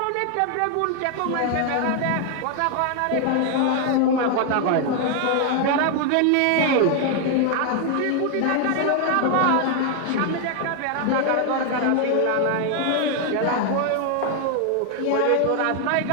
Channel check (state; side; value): different; both; correlation 0.00